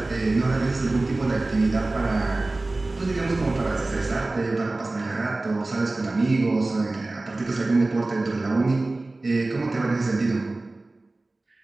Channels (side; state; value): left; quieter; 3.0 dB